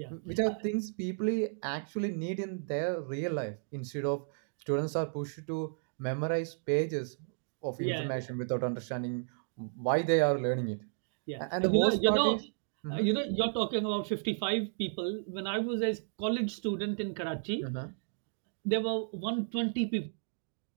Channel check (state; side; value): silent; left; digital silence